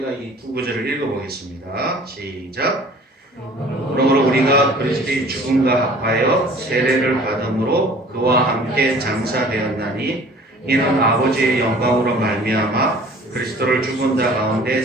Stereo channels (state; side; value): normal; both; correlation 0.49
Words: 이 두 구절을 읽어보겠습니다. 시작. 그러므로 우리가 그리스도의 죽음과 합하여 세례를 받음으로 그와 함께 장사되었나니 이는 아버지의 영광으로 말미암아 그리스도를 죽은 자 가운데